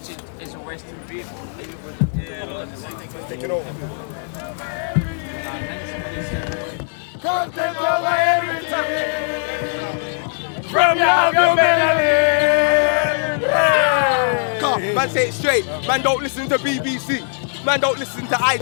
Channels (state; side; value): silent; right; 66 dB below the other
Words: as a Western people? Are you presented? Take it over. From your Come, man, say it straight. Man, don't listen to BBC. Man, don't listen to